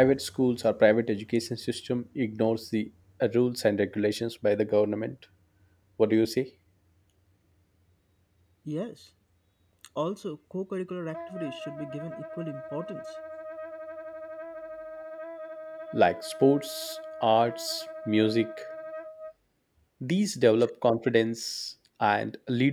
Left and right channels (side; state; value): both; identical; correlation 1.00